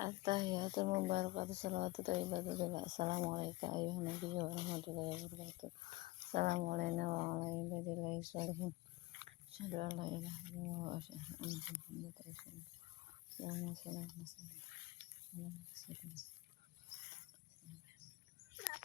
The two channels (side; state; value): right; quieter; 20.5 dB